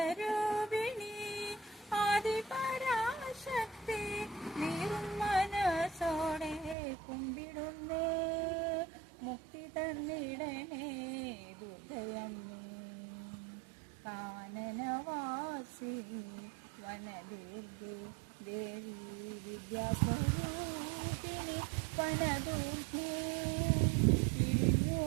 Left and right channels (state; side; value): drops out; left; at 6.8 s